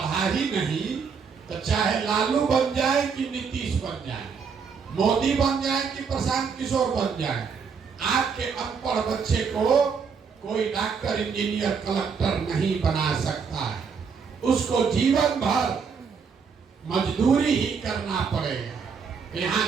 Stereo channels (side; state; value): left; quieter; 5.9 dB